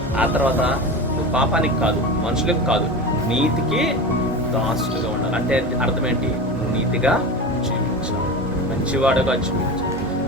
ఆ తర్వాత నువ్వు పాపానికి కాదు, మనుషులకు కాదు, నీతికి దాసులుగా ఉండాలి. అంటే అర్థం ఏంటి? నువ్వు నీతిగా జీవించాలి, మంచివాడుగా జీవించాలి.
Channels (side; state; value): both; normal; correlation 0.27